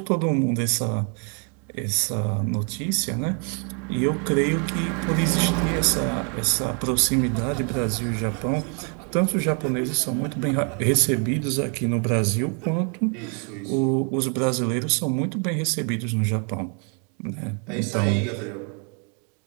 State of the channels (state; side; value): quieter; left; 39.5 dB